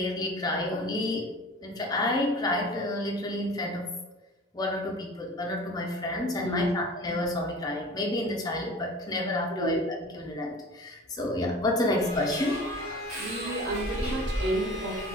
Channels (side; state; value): both; normal; correlation 0.40